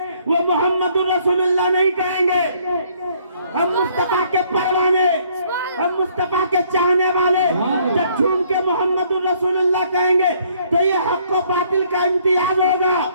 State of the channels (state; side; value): inverted; both; correlation -0.64